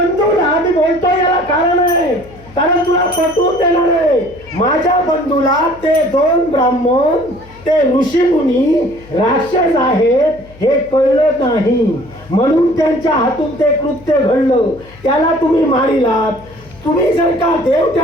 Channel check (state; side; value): noise; left; hum, 23 dB below the sound